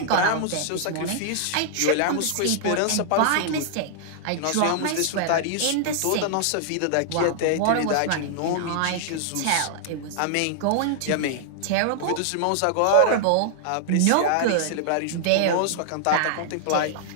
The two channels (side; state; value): both; different; correlation -0.01